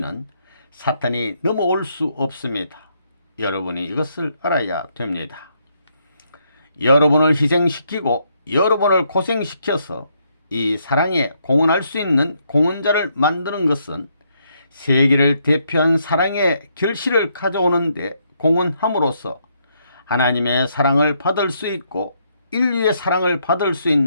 사탄이 넘어올 수 없습니다. 여러분이 이것을 알아야 됩니다. 여러분을 희생시키고 여러분을 고생시켜서 이 사랑에 공헌할 수 있는 공헌자를 만드는 것은 세계를 대표한 사랑의 결실을 가져오는데 공헌함으로써 하나님의 사랑을 받을 수 있고 인류의 사랑을 받을 수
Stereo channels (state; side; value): inverted; both; correlation -0.74